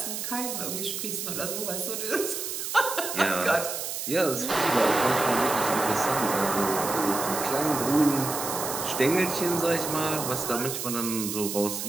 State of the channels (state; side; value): noise; right; hiss, 4 dB below the sound